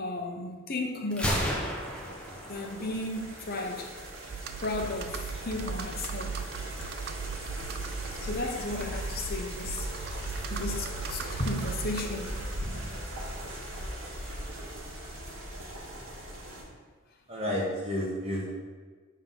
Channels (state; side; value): normal; both; correlation 0.36